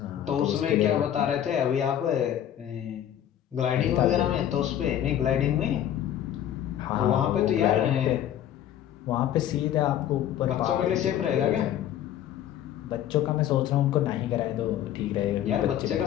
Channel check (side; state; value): right; quieter; 10.9 dB